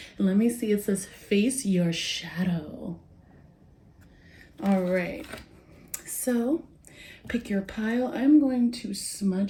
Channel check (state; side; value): identical; both; correlation 1.00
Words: And let me see, it says face your shadow. All right, so pick your pile. I'm going to